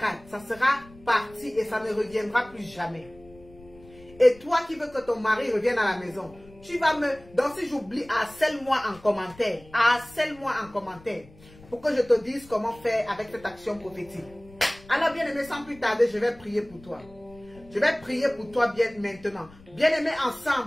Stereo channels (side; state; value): left; noise; rumble, 23 dB below the sound